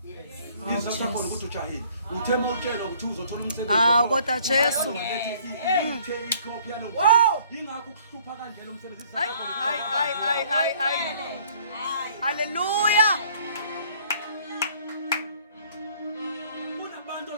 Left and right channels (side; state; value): both; inverted; correlation -0.57